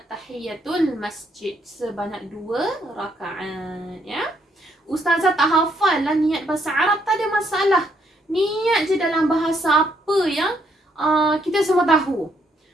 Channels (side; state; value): both; normal; correlation 0.72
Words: tahiyatul masjid sebanyak 2 rakaat ya. Ustazah tak hafal lah niat bahasa Arab, tak ada masalah. Niat je dalam bahasa apa yang kita semua tahu.